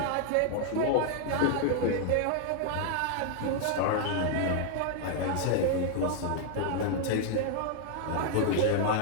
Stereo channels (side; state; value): both; different; correlation 0.00